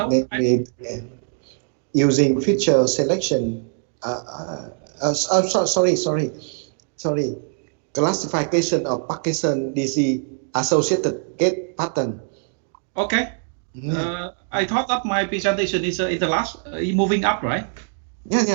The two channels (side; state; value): left; silent; 64 dB below the other